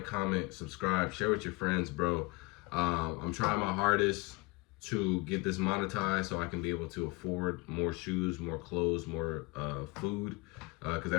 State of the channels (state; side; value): quieter; right; 24.6 dB